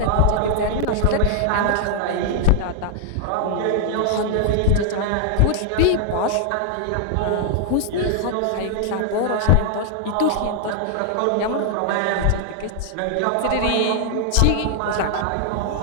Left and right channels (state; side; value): different; both; correlation 0.00